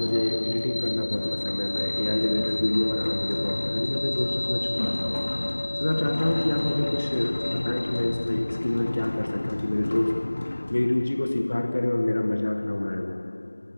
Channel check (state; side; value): inverted; both; correlation -1.00